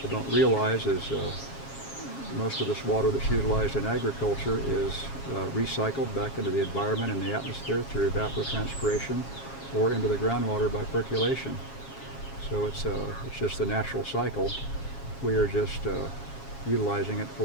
don't realize is most of this water that's utilized in agriculture is recycled back into the environment and the atmosphere through evapotranspiration or into the groundwater by percolation. So it's just the natural cycle. We are just utilizing it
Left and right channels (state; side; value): late; right; 7.3 ms